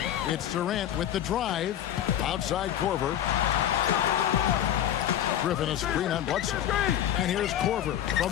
It's Durant with the drive. Outside Korver. Griffin a screen on Bledsoe. And here's Korver from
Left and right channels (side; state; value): right; quieter; 11.0 dB